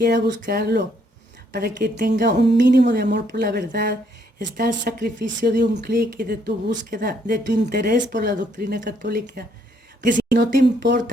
buscarlo, para que tenga un mínimo de amor por la verdad. Está el sacrificio de un clic y de tu búsqueda, de tu interés por la doctrina católica. Que si no te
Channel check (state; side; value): normal; both; correlation 0.69